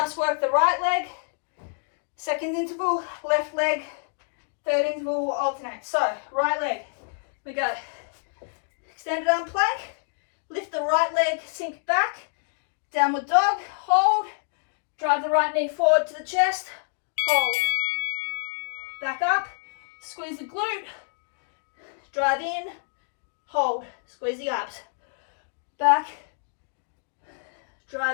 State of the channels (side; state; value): right; silent; digital silence